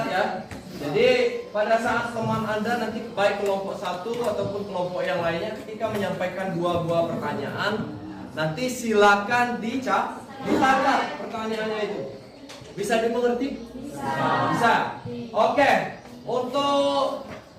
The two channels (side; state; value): both; identical; correlation 1.00